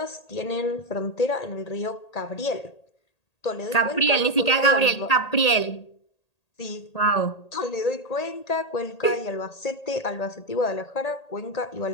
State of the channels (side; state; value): right; late; 1.8 ms